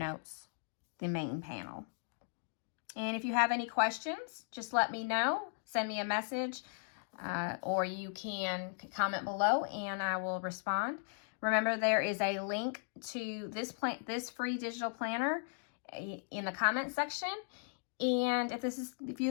the main panel. And if you have any questions, just let me know. Send me a message, or you can comment below and I will respond. Remember, there is a link to this free digital planner in the comment section. And if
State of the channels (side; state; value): right; silent; digital silence